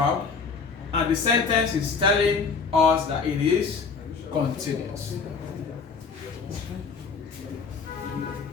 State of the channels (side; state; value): right; quieter; 5.2 dB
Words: and the sentence is telling us that it is continuous.